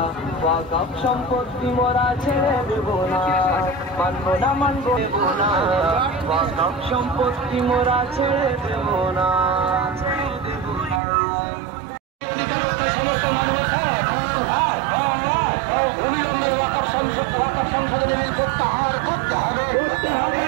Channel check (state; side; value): drops out; left; at 11.0 s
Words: ওয়াকফ সম্পত্তি মোরা ছেড়ে দেব না, মানবো না মানবো না। ওয়াকফ সম্পত্তি মোরা ছেড়ে দেব না। সমস্ত মানুষ অবিলম্বে ওয়াকফ সংশোধনী বিল প্রত্যাহার করতে হবে,